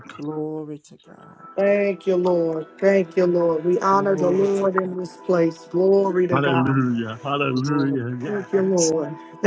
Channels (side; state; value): both; identical; correlation 1.00